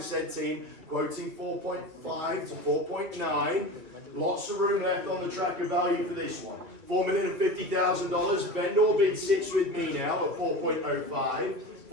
team, quoting 4.5 to 4.9. Lots of room left on the tracker value for this one. $4,050,000. Vendor bid sits with me now at 4.05.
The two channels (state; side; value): late; left; 3.0 ms